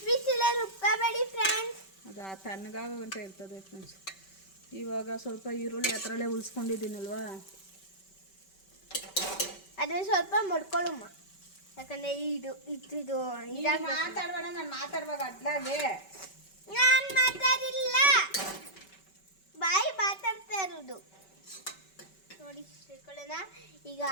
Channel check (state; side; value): late; right; 5.2 ms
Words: ಬಿಸಿಲೇ ರುಬ್ಕೋಬೇಡಿ ಫ್ರೆಂಡ್ಸ್. ಅದು ತಣ್ಣಗಾಗಂತ ಇರ್ತದೆ ಫ್ರೆಂಡ್ಸ್. ಇವಾಗ ಸ್ವಲ್ಪ ಈರುಳ್ಳಿ ಹತ್ರಲ್ಲೇ ಉಳಿಸ್ಕೊಂಡಿದ್ದೀನಲ್ವಾ, ಅದನ್ನ ಸ್ವಲ್ಪ ಮಡ್ಕೊಳ್ಳಮ್ಮ. ಯಾಕಂದ್ರೆ ಇದು ಮಾತಾಡ್ಬೇಡ. ನಾನು ಮಾತಾಡುವಾಗ ಅಡ್ಲಾಗೆ ನಾನು ಮಾತಾಡಿಲ್ಲ, ಬಾಯಿ ಮಾತಾಡ್ತಾ ಇರೋದು ನೋಡಿ. ಸೇರ್ಕೊಳ್ಳೋಣ ಈಗ.